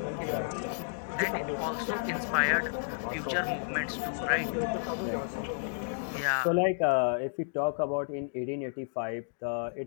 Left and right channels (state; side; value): silent; right; digital silence